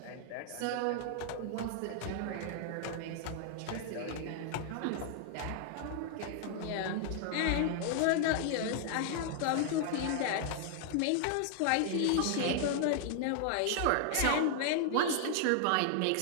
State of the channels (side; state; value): both; different; correlation 0.00